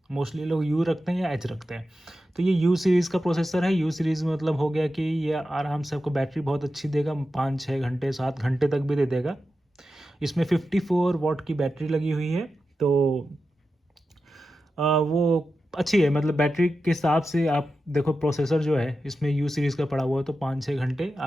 मोस्टली लोग यू रखते हैं या एच रखते हैं। तो ये यू सीरीज़ का प्रोसेसर है। यू सीरीज़ मतलब हो गया कि ये आराम से आपको बैटरी बहुत अच्छी देगा, 5-6 घंटे 7 घंटे तक भी दे देगा। इसमें 54 वॉट की बैटरी लगी हुई है, तो वो अच्छी है, मतलब बैटरी के हिसाब से आप देखो। प्रोसेसर जो है इसमें यू सीरीज़ का पड़ा हुआ है तो 5-6 घंटे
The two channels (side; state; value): both; normal; correlation 0.91